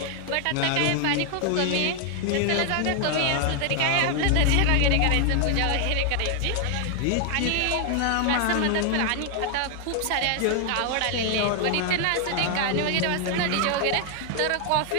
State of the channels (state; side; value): different; both; correlation 0.00